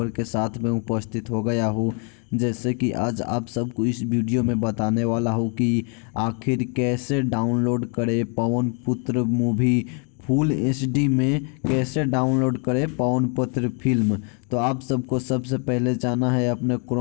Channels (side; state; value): right; quieter; 39.1 dB